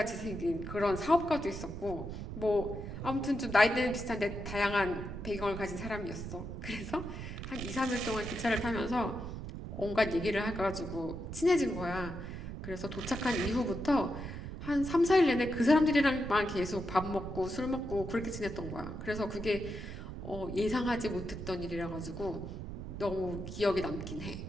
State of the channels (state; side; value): noise; right; rumble, 8 dB below the sound